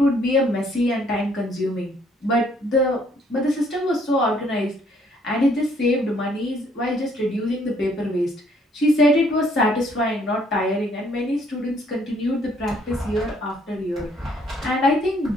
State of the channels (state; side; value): normal; both; correlation 0.65